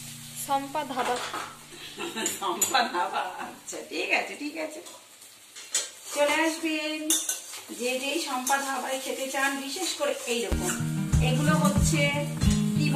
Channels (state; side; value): identical; both; correlation 1.00